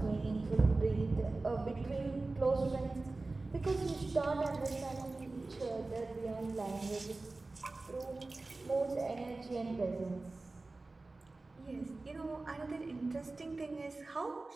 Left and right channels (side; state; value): left; quieter; 3.3 dB